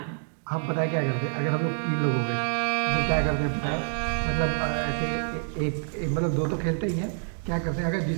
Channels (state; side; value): silent; left; digital silence